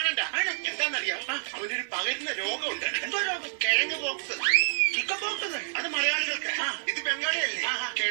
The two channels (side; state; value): left; silent; digital silence